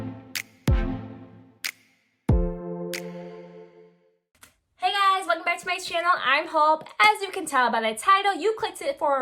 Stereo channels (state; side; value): identical; both; correlation 1.00